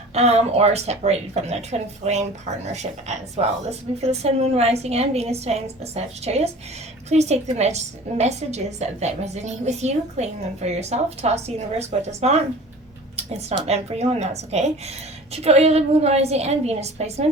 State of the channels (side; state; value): both; normal; correlation 0.42